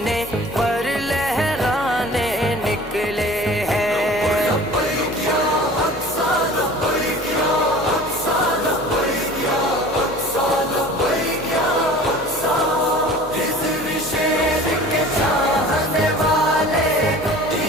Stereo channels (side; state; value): both; normal; correlation 0.43